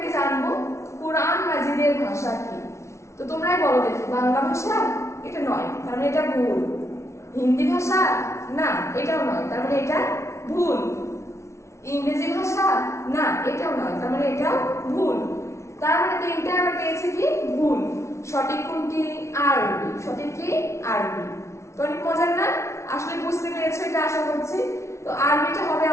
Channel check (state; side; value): late; right; 0.13 ms